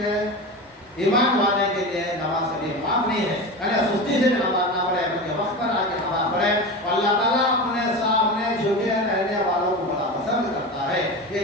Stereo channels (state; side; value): normal; both; correlation 0.26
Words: ایمان والے کے لیے نماز کبھی معاف نہیں ہے۔ یعنی سستی سے بھی نماز نہ پڑھے بلکہ وقت پر آ کے نماز پڑھے، اور اللہ تعالیٰ اپنے سامنے جھکے رہنے والوں کو بڑا پسند کرتا ہے۔